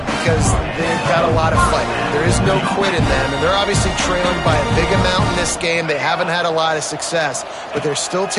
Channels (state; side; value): identical; both; correlation 1.00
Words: because they've got a lot of fight. There is no quit in them, and they're obviously trailing by a big amount in this game. They haven't had a lot of success, but they're still